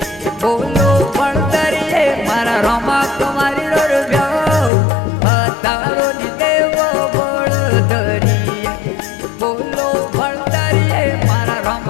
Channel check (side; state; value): right; drops out; at 4.7 s